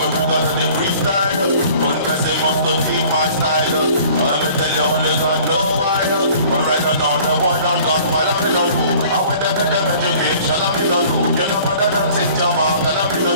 bring out the freestyle. One person must to keep my style. Let me tell you only God know why. But right now the boy done gone while I'm in a loop. I went to get them education, I'm in a loop. You know mother than St. Jamal, and I'm in a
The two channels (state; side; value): inverted; both; correlation -0.50